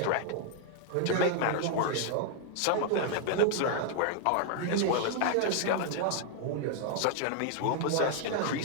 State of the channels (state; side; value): different; both; correlation 0.00